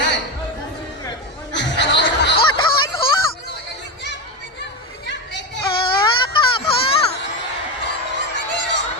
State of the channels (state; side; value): normal; both; correlation 0.15